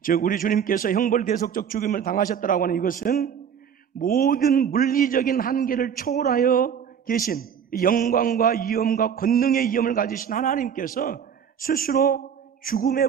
즉 우리 주님께서 형벌대속적 죽임을 당하셨다라고 하는 이것은 모든 물리적인 한계를 초월하여 계신 영광과 위엄과 권능의 위엄을 가지신 하나님께서 스스로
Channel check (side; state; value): left; quieter; 7.9 dB